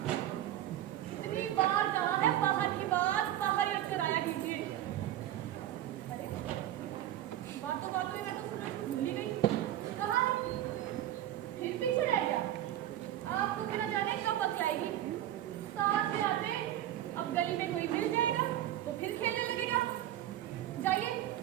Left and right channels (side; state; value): left; quieter; 12.6 dB